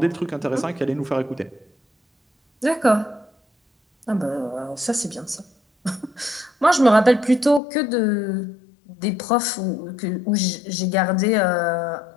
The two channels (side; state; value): right; drops out; at 7.6 s